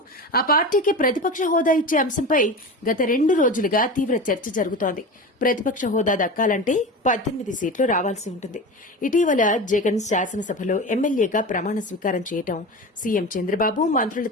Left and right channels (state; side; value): normal; both; correlation 0.28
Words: ఆ పార్టీకి ప్రతిపక్ష హోదా ఇచ్చే అంశంపై గత 2 రోజులుగా తీవ్ర చర్చ జరుగుతోంది. ప్రతిపక్ష హోదా దక్కాలంటే 18 సీట్లు రావాల్సి ఉంటుంది. ఇటీవల జగన్ శాసనసభలో ఎమ్మెల్యేగా ప్రమాణ స్వీకారం చేయటం, సీఎం చంద్రబాబు మంత్రుల